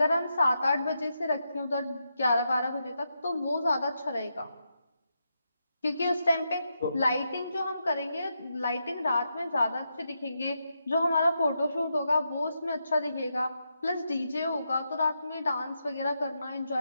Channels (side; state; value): both; inverted; correlation -0.84